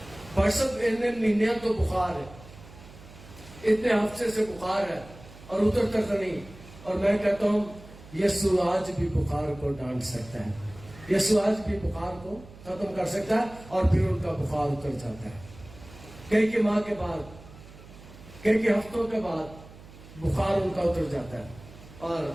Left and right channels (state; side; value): noise; right; hum, 19 dB below the sound